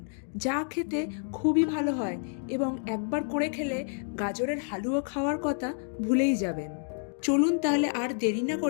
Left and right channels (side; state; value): right; silent; 58 dB below the other